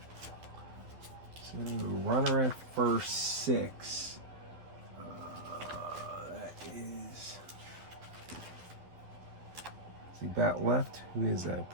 So runner at first, 6. That is. See, bat left. Who is that?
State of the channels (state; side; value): late; left; 11 ms